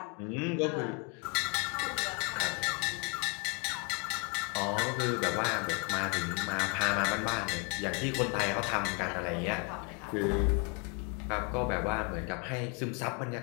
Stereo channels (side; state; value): right; quieter; 32.7 dB